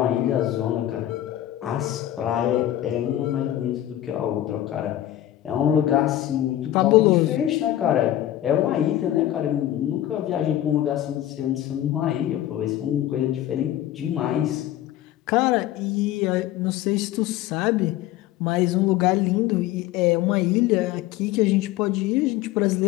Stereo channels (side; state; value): right; quieter; 13.1 dB